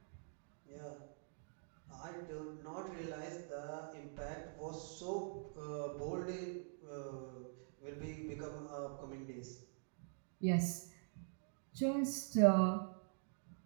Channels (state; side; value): silent; left; digital silence